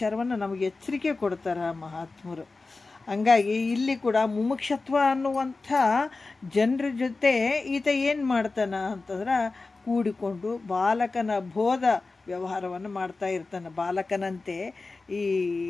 ನಮಗೆ ಎಚ್ಚರಿಕೆ ಕೊಡ್ತಾರೆ ಮಹಾತ್ಮರು. ಹಂಗಾಗಿ ಇಲ್ಲಿ ಕೂಡ ಮುಮುಕ್ಷತ್ವ ಅನ್ನುವಂಥ ಜನರ ಜೊತೆ ಈತ ಏನು ಮಾಡ್ತಾನೆ ಅಂತಂದ್ರೆ ಕೂಡಿಕೊಂಡು ಬಾಲಕನ ಬೋಧ ವ್ಯವಹಾರವನ್ನು ಮಾಡ್ತಾ ಇರ್ತಾನೆ. ಬಾಲಕನಂತೆ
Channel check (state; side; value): quieter; right; 3.7 dB